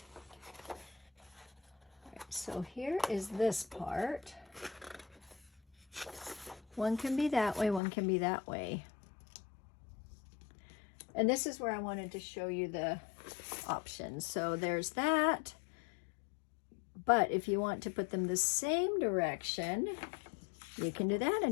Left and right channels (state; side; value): drops out; right; at 7.8 s